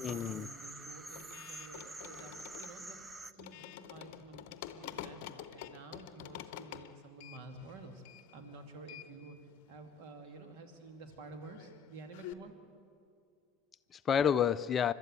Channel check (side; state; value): right; quieter; 6.7 dB